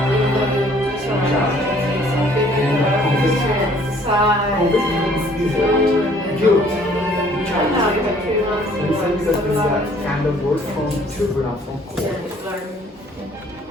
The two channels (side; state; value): both; normal; correlation 0.58